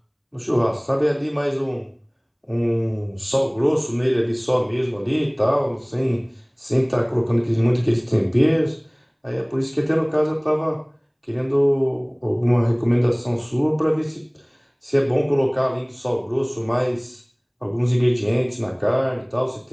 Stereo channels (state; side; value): identical; both; correlation 1.00